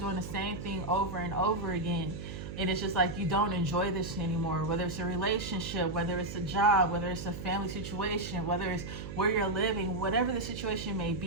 the same thing over and over again. And it's just like you don't enjoy this anymore, whether it's a relationship, whether it's a job, whether it's a family situation, whether it's where you're living, whatever the situation may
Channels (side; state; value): right; noise; hum, 8 dB below the sound